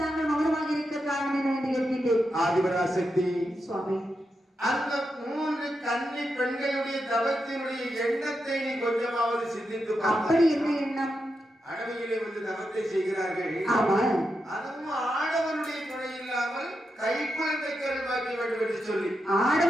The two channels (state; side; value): normal; both; correlation 0.86